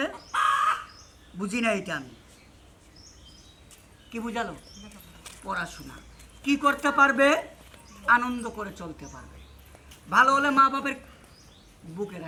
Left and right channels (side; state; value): both; identical; correlation 1.00